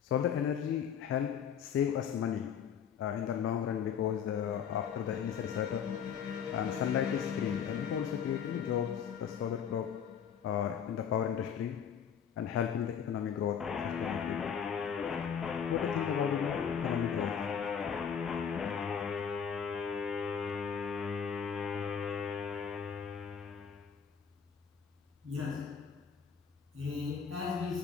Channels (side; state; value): right; quieter; 7.5 dB